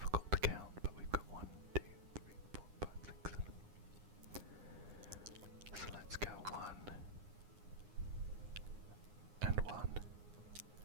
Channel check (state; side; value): late; left; 9.7 ms